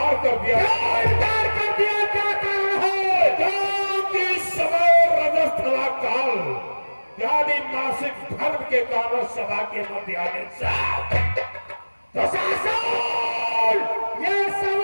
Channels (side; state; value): both; inverted; correlation -1.00